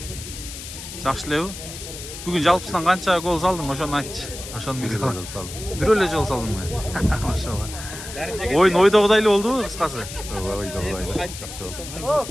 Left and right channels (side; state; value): left; noise; hiss, 11 dB below the sound